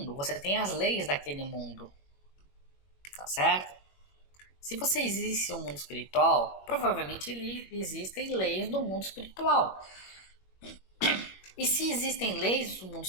você tem as leis daquele mundo, tá certo? Se você existe um mundo espiritual, provavelmente existem leis do mundo espiritual. E se existem leis do mundo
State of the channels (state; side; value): late; right; 21 ms